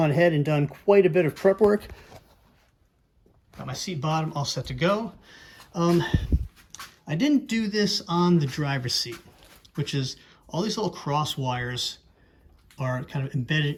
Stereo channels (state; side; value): identical; both; correlation 1.00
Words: ahead and done quite a bit of prep work. Got my seat bottom all set to go. I didn't do this on the driver's seat, which is all these little cross wires are kind of